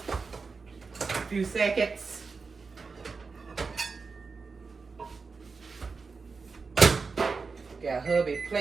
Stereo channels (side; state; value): left; quieter; 4.6 dB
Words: A few seconds. Got hubby